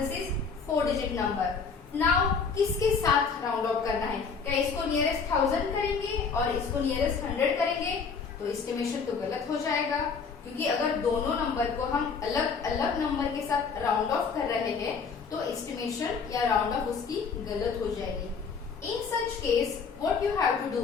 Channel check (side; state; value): right; quieter; 5.4 dB